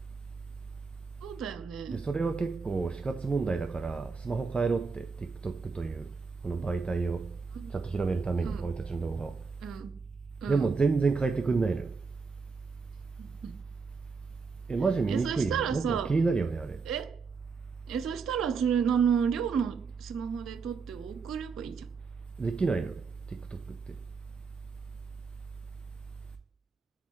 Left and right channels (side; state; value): left; quieter; 4.9 dB